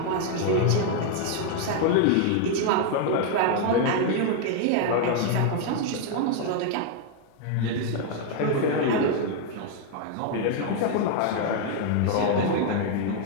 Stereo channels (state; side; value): different; both; correlation 0.00